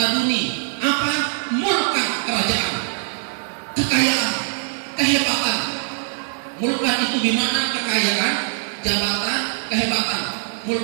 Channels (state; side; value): silent; left; digital silence